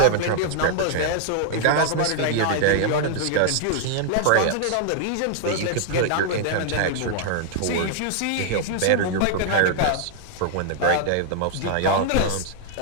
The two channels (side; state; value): both; different; correlation 0.00